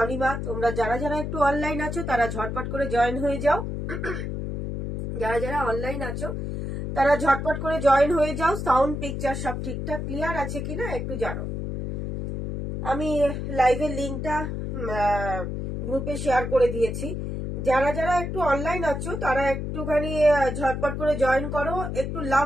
তোমরা যারা যারা একটু অনলাইন আছো তারা ঝটপট করে জয়েন হয়ে যাও। যারা যারা অনলাইন আছো তারা ঝটপট করে জয়েন হয়ে যাও। সাউন্ড পিকচার সব ঠিকঠাক ক্লিয়ার আছে কিনা একটু জানো। আমি লাইভের লিঙ্কটা গ্রুপে শেয়ার করে দিয়েছি। যারা যারা একটু অনলাইন আছো তারা একটুখানি ঝটপট করে জয়েন করো। একটু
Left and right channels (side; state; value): left; noise; hum, 4 dB below the sound